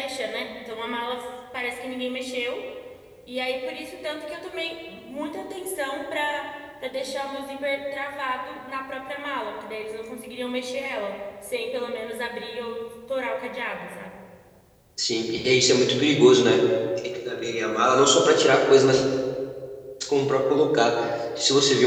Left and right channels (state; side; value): identical; both; correlation 1.00